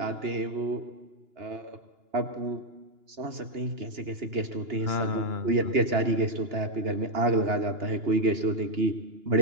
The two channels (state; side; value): late; left; 2.9 ms